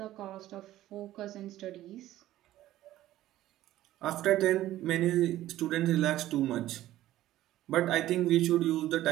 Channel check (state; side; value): quieter; left; 14.4 dB